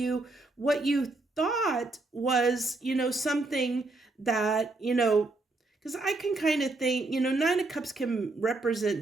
thought was, something that, because I can kind of think, 9 of Cups can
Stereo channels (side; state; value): left; quieter; 3.1 dB